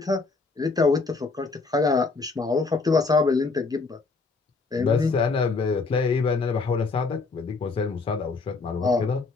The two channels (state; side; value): quieter; right; 4.1 dB